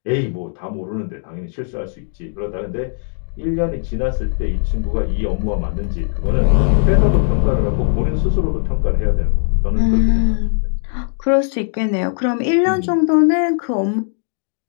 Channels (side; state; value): right; silent; 60 dB below the other